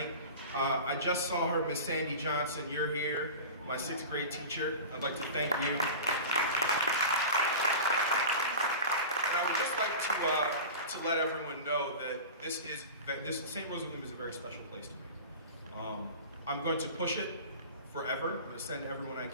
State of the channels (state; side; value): inverted; both; correlation -0.32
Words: I just saw her, Miss Sandy Johnson, you're here, my 6th grade teacher. I'd like to thank you. And I would just like to let everyone know that this St. Rose of Lima is a very special place to me. I'm going to push it forever. I'm going to send everyone I